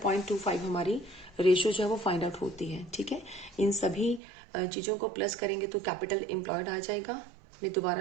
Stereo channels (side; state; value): left; drops out; at 4.2 s